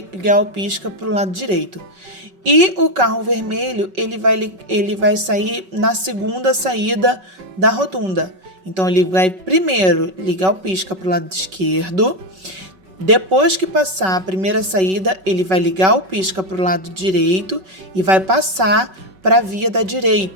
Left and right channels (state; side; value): late; left; 5.3 ms